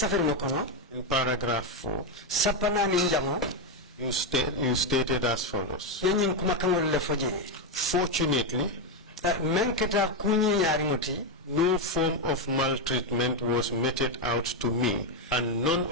ngokono in paragraph 4, sapana ni njamo you stated as follows. yenyin kumakan le foje. Fortunately, menketa kunyi nyari ngoti no form of maltreatment was meted out to me, and none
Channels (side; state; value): both; normal; correlation 0.06